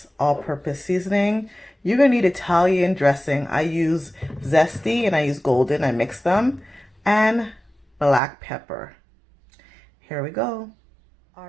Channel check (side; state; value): left; drops out; at 8.2 s